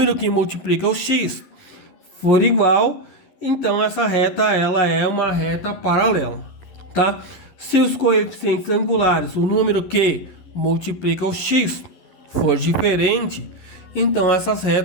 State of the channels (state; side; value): late; right; 11 ms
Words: que multiplica o x for igual, então essa reta ela é uma reta paralela, tá? Se os coeficientes angulares, o número que multiplica o x for diferente, então essas